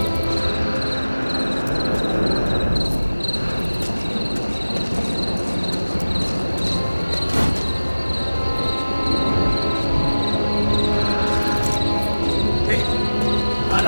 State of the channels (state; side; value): inverted; both; correlation -1.00